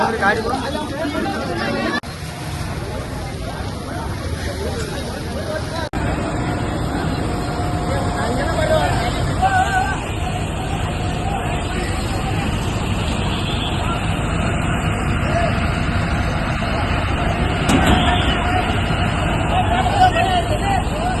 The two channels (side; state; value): both; identical; correlation 1.00